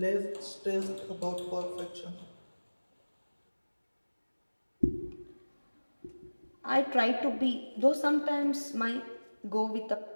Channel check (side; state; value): both; inverted; correlation -1.00